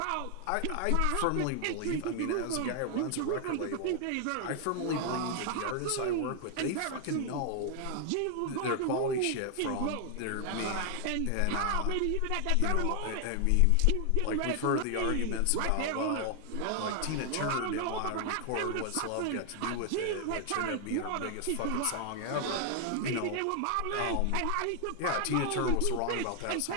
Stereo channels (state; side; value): different; both; correlation 0.00